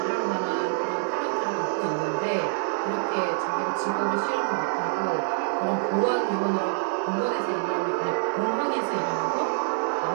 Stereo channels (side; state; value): left; silent; 61 dB below the other